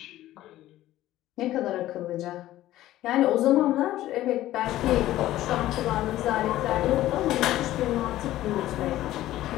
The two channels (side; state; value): right; quieter; 14.6 dB